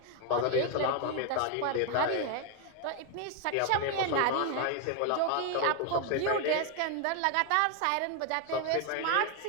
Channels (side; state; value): both; different; correlation 0.01